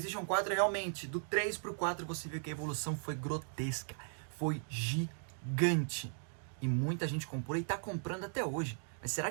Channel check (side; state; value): left; silent; digital silence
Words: 4 realmente, do 3 para o 4, você viu que a evolução foi grotesca, foi gigante. E muita gente comprou e está comprando até hoje. Mas será